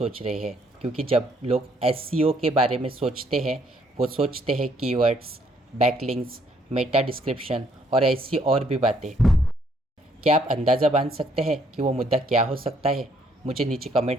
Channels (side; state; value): both; normal; correlation 0.67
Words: रहे हैं। क्योंकि जब लोग एसईओ के बारे में सोचते हैं, वो सोचते हैं कीवर्ड्स, बैकलिंक्स, मेटा डिस्क्रिप्शन और ऐसी और भी बातें। क्या आप अंदाज़ा बांध सकते हैं कि वो मुद्दा क्या हो सकता है? मुझे नीचे कमेंट